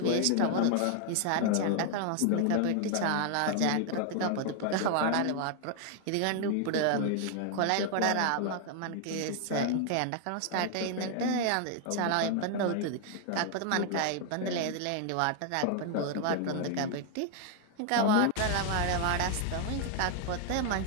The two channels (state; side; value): different; both; correlation 0.00